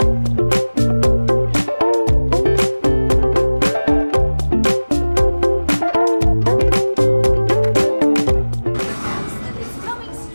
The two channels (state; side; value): inverted; both; correlation -1.00